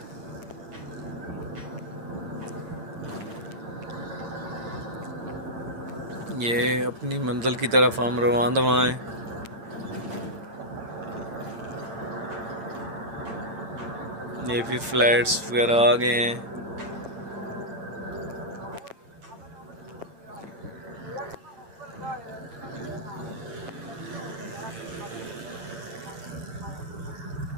ये अपनी मंजिल की तरफ हम रवाना हैं। ये भी फ्लैट्स वगैरह आ गए हैं।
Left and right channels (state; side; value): late; left; 8.8 ms